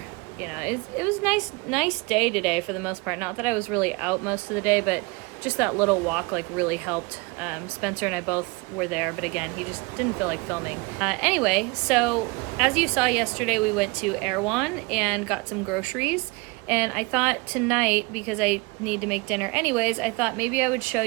It was nice day today for the most part. Not that I was really out most of the day, but just that little walk really helped. Spencer and I both were there, but again, he just didn't feel like filming. Anyway, so as you saw yesterday, we went to Erewhon and got some groceries. And I thought tonight, because I need to make dinner anyways, I thought maybe I would show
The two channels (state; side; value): quieter; left; 26.5 dB